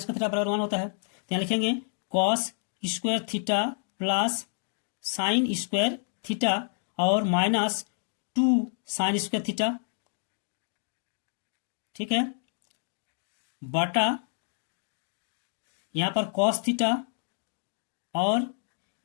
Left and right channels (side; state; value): right; silent; digital silence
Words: theta बराबर 1 होता है। तो यहाँ लिखेंगे cos square theta plus sine square theta और माइनस 2 साइन स्क्वायर थीटा, ठीक है, बटा यहाँ पर कॉस थीटा और